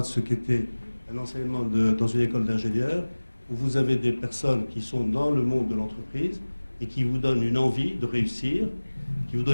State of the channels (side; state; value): both; inverted; correlation -1.00